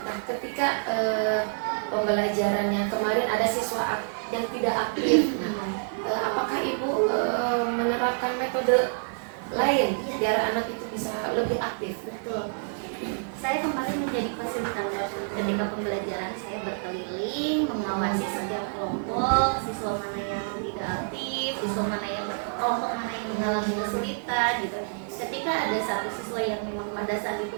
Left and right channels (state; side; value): silent; left; 60 dB below the other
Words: ketika pembelajarannya kemarin ada siswa yang tidak aktif, nah, apakah ibu menerapkan metode lain biar anak itu bisa lebih aktif? Betul. Saya kemarin menjadi fasilitator ketika pembelajaran. Saya berkeliling mengawasi setiap kelompok, siswa mana yang tidak aktif, siswa mana yang kelompok mana yang mengalami kesulitan gitu. Ketika ada satu siswa yang memang pada saat